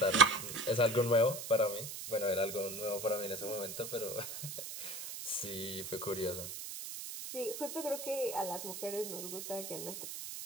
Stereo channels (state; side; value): noise; right; hiss, 8 dB below the sound